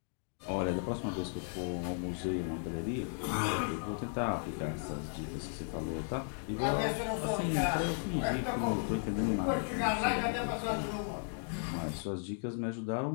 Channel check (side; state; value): right; silent; 54 dB below the other